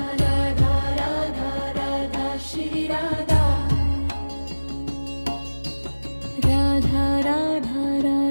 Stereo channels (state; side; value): inverted; both; correlation -1.00